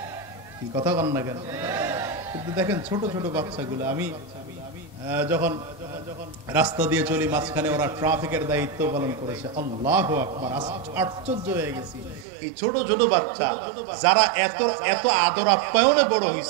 কি কথা কন না কেন? কিন্তু দেখেন ছোট ছোট বাচ্চাগুলো, আমি যখন রাস্তা দিয়ে চলি মাঝখানে ওরা ট্রাফিকের দায়িত্ব পালন করেছে, আল্লাহু আকবার, আশ্চর্য হয়ে গেছি। এই ছোট ছোট বাচ্চা যারা এত এত আদর আপ্যায়নে বড়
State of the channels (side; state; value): left; drops out; at 12.2 s